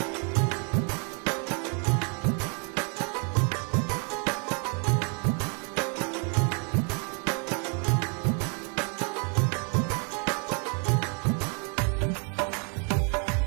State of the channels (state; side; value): quieter; left; 37.6 dB